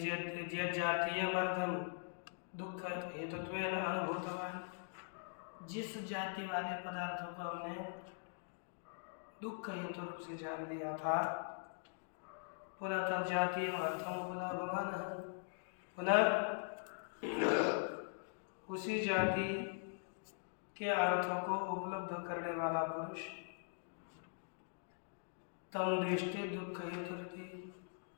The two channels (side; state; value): right; silent; digital silence